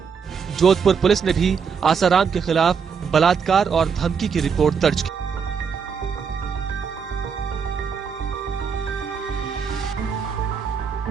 जोधपुर पुलिस ने भी आसाराम के खिलाफ बलात्कार और धमकी की रिपोर्ट दर्ज की।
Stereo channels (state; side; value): quieter; left; 6.3 dB